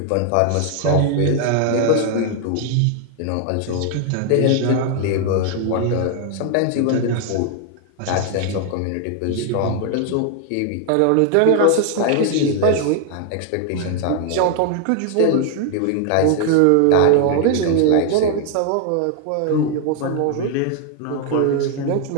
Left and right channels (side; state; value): both; different; correlation 0.00